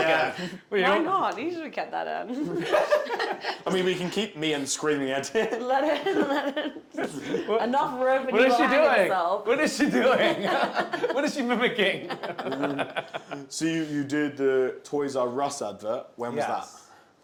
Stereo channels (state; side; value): identical; both; correlation 1.00